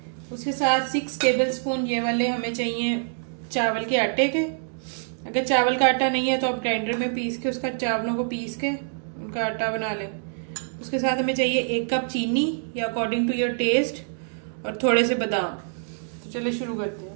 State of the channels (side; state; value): left; silent; digital silence